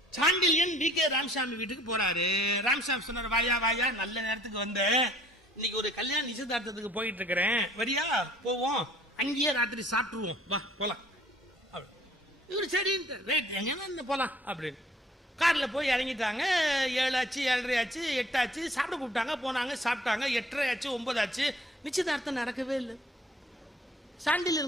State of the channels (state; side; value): normal; both; correlation 0.56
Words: சாண்டில்யன் வி.கே. ராமசாமி வீட்டுக்கு போறாரு. ராமசாமி சொன்னார், வாயா வாயா, நல்ல நேரத்துக்கு வந்த, இன்னைக்கு ஒரு கல்யாண நிச்சயதார்த்தத்துக்கு போயிட்டு இருக்கிறேன், வரியா போவோம், அங்கேயே ராத்திரி சாப்பிட்டுருவோம், வா போலாம். இவரு சரி எங்க போலாம் அப்படின்னு கார்ல போய் இறங்கிட்டாங்க. 7 ஆச்சு, 7:30 ஆச்சு, 8 ஆச்சு. சாப்பிட கூப்பிட்டாங்க, போனாங்க, சாப்பிட்டாங்க. 8:30 ஆச்சு, 9 ஆச்சு. நிச்சயதார்த்தம் நடக்கவே இல்லை.